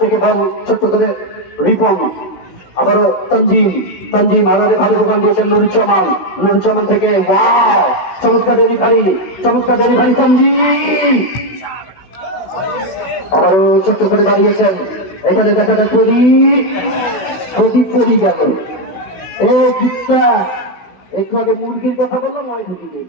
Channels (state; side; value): late; right; 16 ms